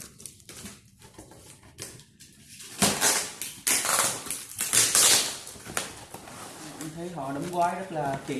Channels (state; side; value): identical; both; correlation 1.00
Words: Mình thấy họ đóng gói rất là